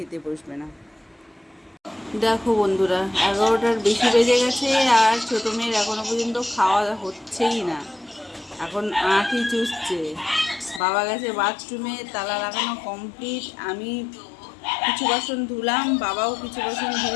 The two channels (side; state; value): right; drops out; at 10.8 s